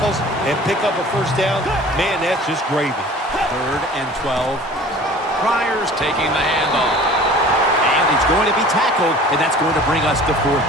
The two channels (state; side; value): normal; both; correlation 0.45